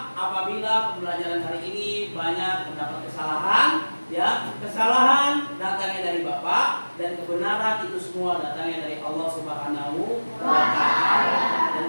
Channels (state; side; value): inverted; both; correlation -1.00